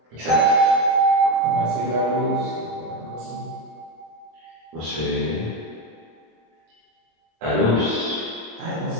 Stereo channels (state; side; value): late; left; 25 ms